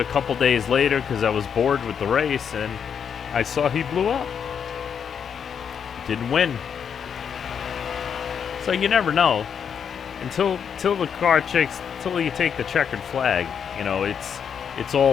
couple days later because I was bored with the race, and I saw he blew up. Didn't win. So you never know until the car checks, until you take the checkered flag. You know, it's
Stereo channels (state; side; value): quieter; right; 7.4 dB